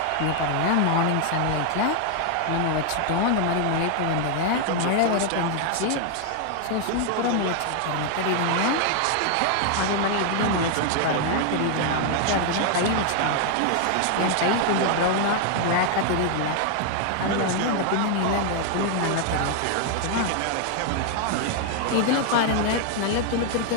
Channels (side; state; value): both; different; correlation 0.00